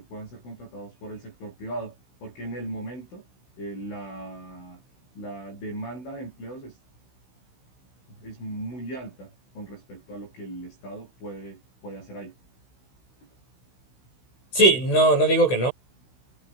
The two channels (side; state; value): right; late; 16 ms